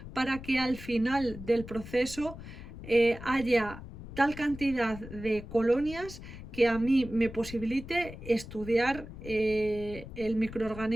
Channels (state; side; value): noise; left; rumble, 13 dB below the sound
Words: para que al final del proceso haya tal cantidad de colonias que a mí me posibilite estudiar el